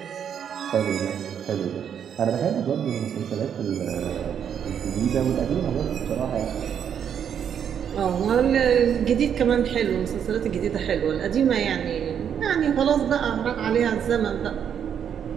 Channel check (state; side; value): quieter; left; 8.4 dB